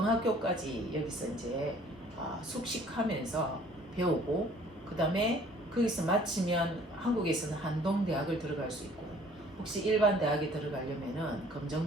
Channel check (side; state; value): both; normal; correlation 0.55